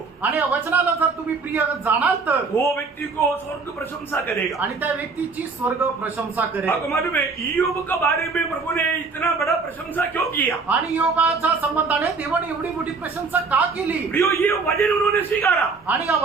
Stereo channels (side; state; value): left; quieter; 4.4 dB